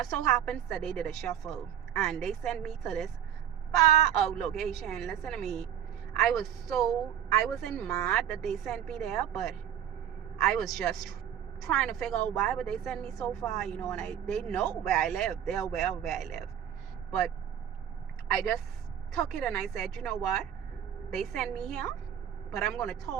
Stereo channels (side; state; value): left; quieter; 9.9 dB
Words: so happens that they did a shuffle, and they sent me to this far out location. Listen to me, I wasn't mad that they sent me there, but I was just trying to figure out why would they send me so far, you know. And they know where I live, they're aware of where I live, but I just took it and I said, you know what, they sent me here, but I'm going to